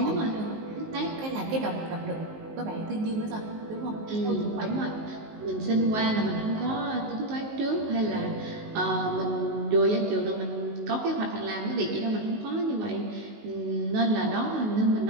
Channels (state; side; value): late; left; 19 ms